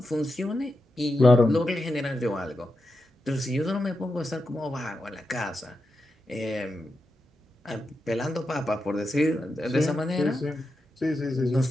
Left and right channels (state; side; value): normal; both; correlation 0.88